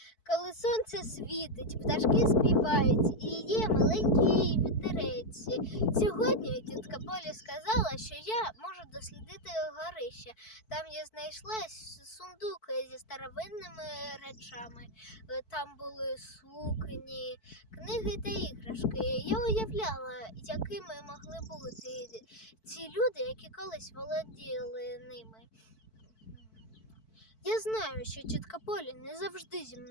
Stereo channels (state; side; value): late; right; 4.5 ms